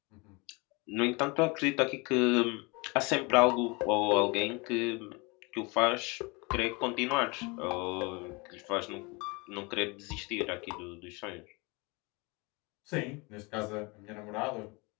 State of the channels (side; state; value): right; quieter; 27.8 dB